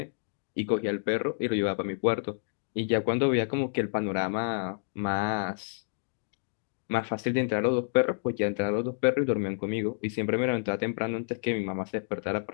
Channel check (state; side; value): silent; right; digital silence